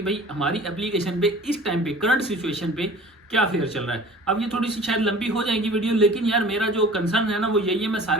भाई हमारी एप्लीकेशन पे इस टाइम पे, करंट सिचुएशन पे क्या फेयर चल रहा है। अब ये थोड़ी सी शायद लंबी हो जाएगी वीडियो, लेकिन यार मेरा जो कंसर्न है ना वो यही है, मैं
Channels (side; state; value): both; normal; correlation 0.45